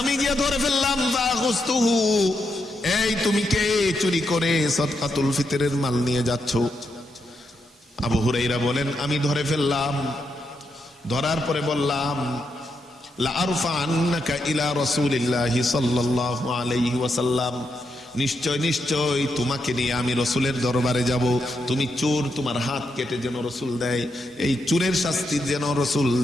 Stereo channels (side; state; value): both; normal; correlation 0.82